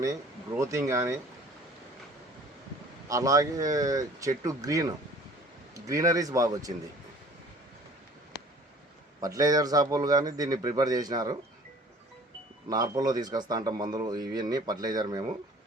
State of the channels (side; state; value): both; normal; correlation 0.50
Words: గ్రోతింగ్ కానీ, అలాగే చెట్టు గ్రీనరీస్ బాగా వచ్చింది. ఫర్టిలైజర్ షాపులు కానీ దీన్ని ప్రిపేర్ చేసినారు. నార్పల్లో తీసుకొస్తా అంటాం మందులు ఇవన్నీ ఫర్టిలైజర్ మేము.